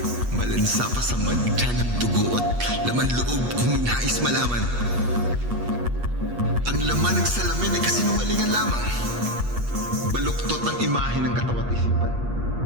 Malansa pa sa madya ng dugo at laman loob kung nais malaman. Ang laman ng salamin ay kasinungalingan lamang. Baluktot ang imahe ng katawan at isipan.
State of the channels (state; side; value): late; left; 8.3 ms